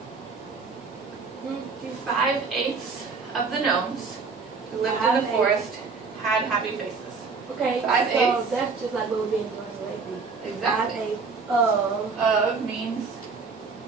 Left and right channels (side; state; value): left; quieter; 4.7 dB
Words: 5/8 of the gnomes who lived in the forest had happy faces. Okay, 5/8. so that's just like what we're being translated. Exactly. 5/8 Of means